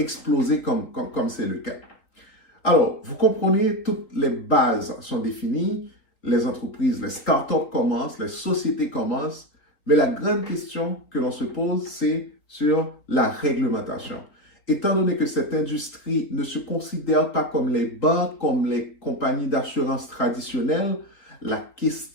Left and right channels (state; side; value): late; right; 3.7 ms